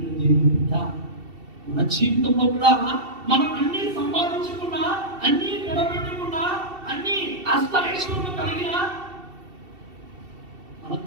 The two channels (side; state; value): left; late; 2.7 ms